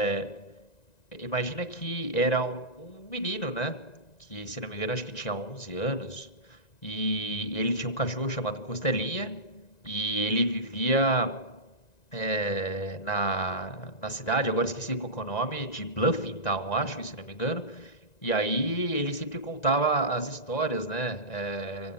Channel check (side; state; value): right; late; 1.9 ms